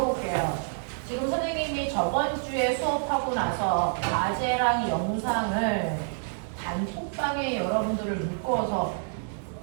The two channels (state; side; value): silent; left; digital silence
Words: 지금 선생님이 저번 주에 수업하고 나서 과제랑 영상을 단톡방에 여러분들을 묶어서